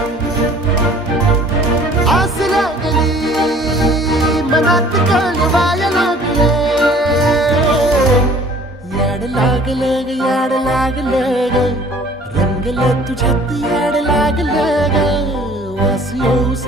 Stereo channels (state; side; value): normal; both; correlation 0.51